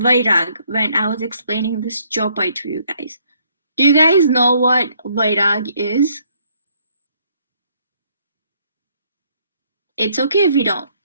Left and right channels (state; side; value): inverted; both; correlation -0.67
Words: when I was explaining this chopai to you guys. Do you guys know what vairag is? It's okay if you don't.